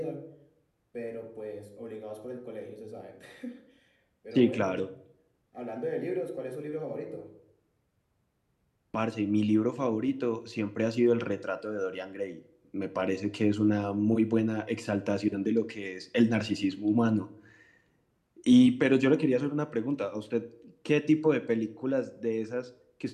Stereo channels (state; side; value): identical; both; correlation 1.00